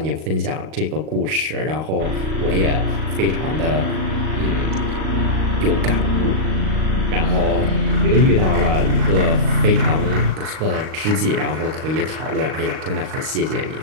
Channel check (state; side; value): late; left; 38 ms